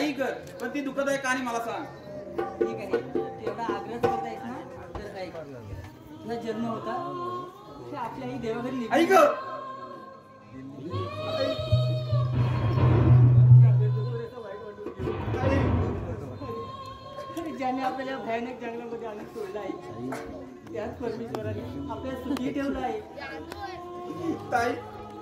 कर, पण ती दुःखदायक कहाणी मला सांग. ठीक आहे, तू एवढा आग्रह करत आहेस ना, तर ऐक. तुझा जन्म होता ते आपल्या आई देवाघरी निघून ऐक. ज्याने आपल्याला भयानक जंगलामध्ये आणून सोडलं आहे, त्याच परमेश्वराने आपल्याला सुखी ठेवलं आहे. ताई,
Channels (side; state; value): both; identical; correlation 1.00